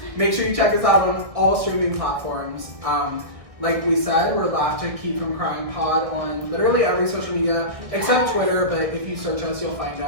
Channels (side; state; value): left; late; 1.6 ms